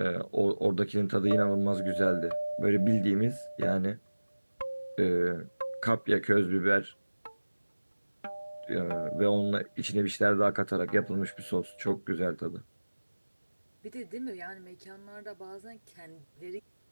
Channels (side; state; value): both; inverted; correlation -1.00